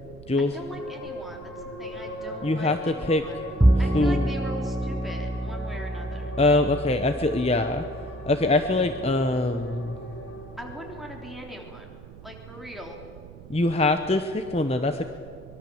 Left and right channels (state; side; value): noise; right; rumble, 18 dB below the sound